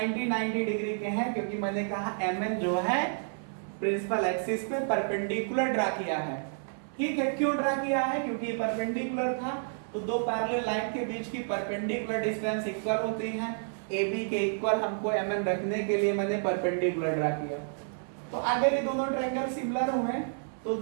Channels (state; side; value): silent; left; 58 dB below the other